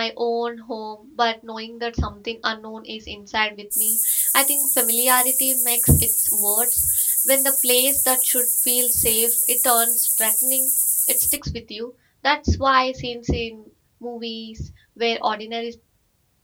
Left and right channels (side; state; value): both; identical; correlation 1.00